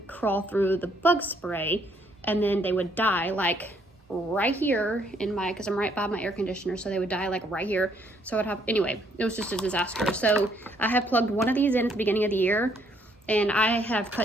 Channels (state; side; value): normal; both; correlation 0.68